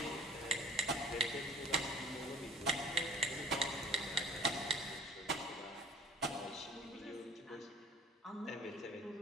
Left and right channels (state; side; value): normal; both; correlation 0.45